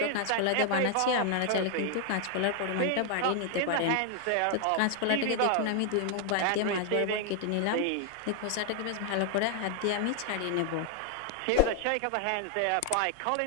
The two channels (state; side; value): different; both; correlation 0.00